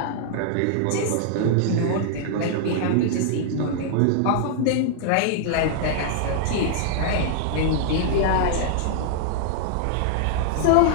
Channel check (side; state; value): both; different; correlation -0.01